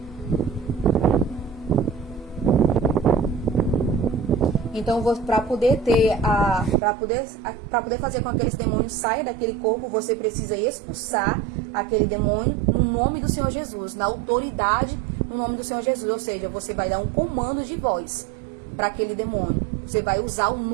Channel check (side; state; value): left; drops out; at 6.8 s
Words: Então, para poder fazer com que aqueles demônios saiam daquele corpo, você precisa expulsar aquele demônio no nome do Senhor Jesus, na autoridade no nome do Senhor Jesus. Ou seja, você vai dar um comando de voz para aquele demônio. Você vai usar o